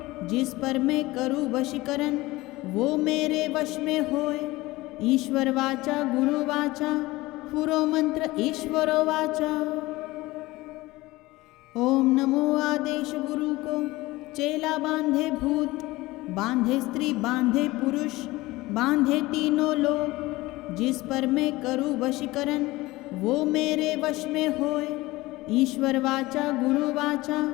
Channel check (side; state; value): right; quieter; 19.7 dB